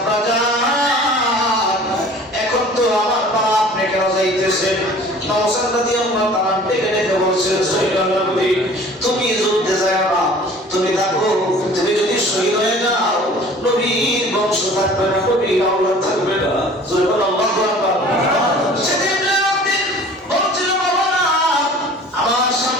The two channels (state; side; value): normal; both; correlation 0.47